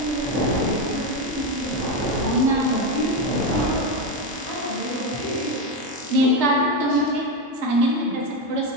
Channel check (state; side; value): normal; both; correlation 0.11